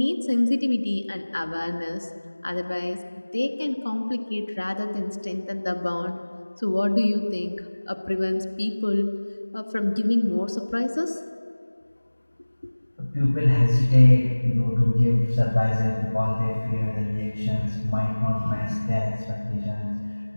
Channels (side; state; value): both; inverted; correlation -1.00